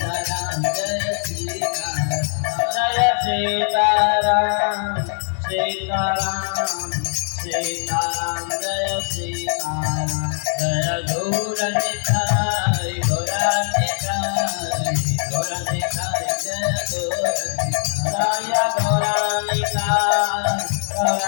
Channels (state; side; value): silent; right; 65 dB below the other